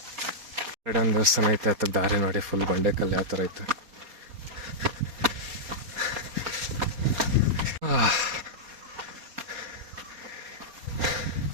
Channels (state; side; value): late; left; 4.2 ms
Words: ಕಡೆ ಒಂದು ದೇವಸ್ಥಾನ ಐತೆ, ಹತ್ತಕ್ಕೆ ದಾರಿ ನೋಡಿ, ಫುಲ್ ಬಂಡೆಕಲ್ಲು ಯಾವ ಥರ ಐತೆ.